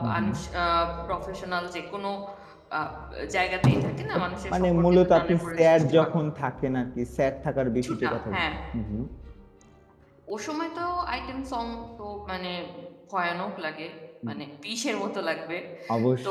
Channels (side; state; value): both; identical; correlation 1.00